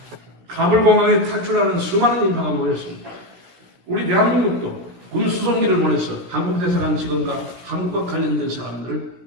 카불 공항에 탈출하는 수많은 인파가 모였습니다. 우리 대한민국도 군 수송기를 보내서 한국 대사관 직원과 한국과 관련된 사람들을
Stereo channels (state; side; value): late; left; 16 ms